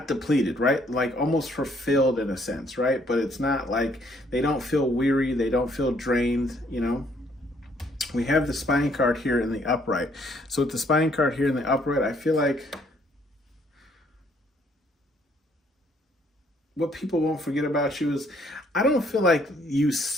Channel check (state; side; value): normal; both; correlation 0.66